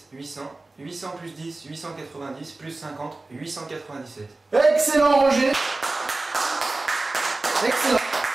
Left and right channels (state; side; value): quieter; left; 3.2 dB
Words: 800. 800 plus 10, 890. Plus 50, 897. Excellent Roger. Excellent.